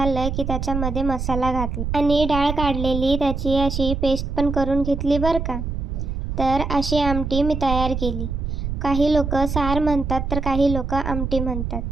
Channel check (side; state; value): right; noise; rumble, 3 dB below the sound